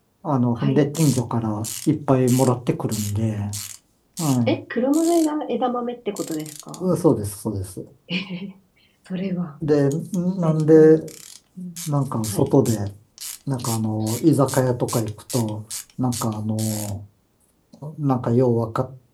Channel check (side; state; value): both; identical; correlation 1.00